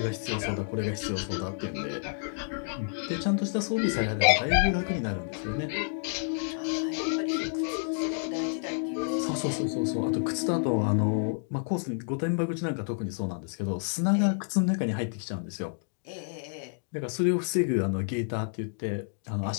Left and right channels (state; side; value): silent; right; digital silence